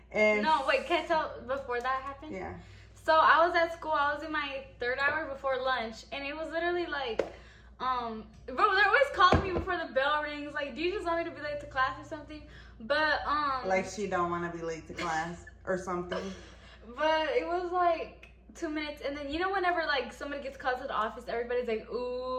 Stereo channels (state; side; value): identical; both; correlation 1.00